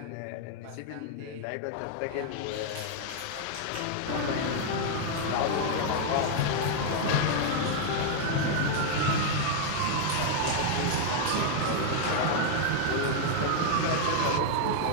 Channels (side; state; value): both; different; correlation 0.00